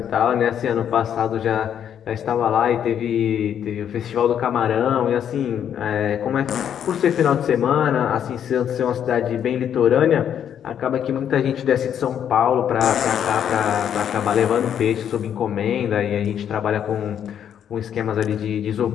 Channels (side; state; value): right; quieter; 9.1 dB